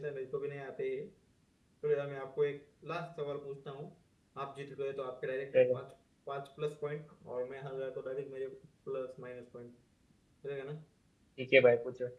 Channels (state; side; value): identical; both; correlation 1.00